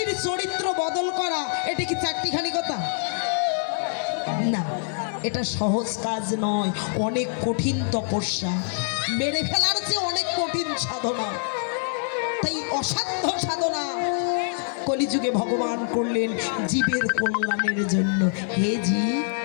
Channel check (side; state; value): right; silent; digital silence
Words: চরিত্র বদল করা এটা কি চারটিখানি কথা? না, এটা সহজ কাজ নয়, অনেক কঠিন তপস্যা। মেরে ফেলার চেয়ে অনেক কঠিন সাধনা, তাই অসাধ্য সাধনা কলিযুগে ভগবান করলেন জীবের কল্যাণের জন্য। হে জীব,